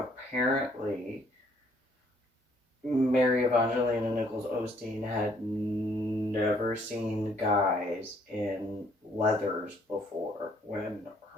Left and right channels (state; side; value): normal; both; correlation 0.65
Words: Mary Evangelina Nichols Osteen had never seen guys in leathers before when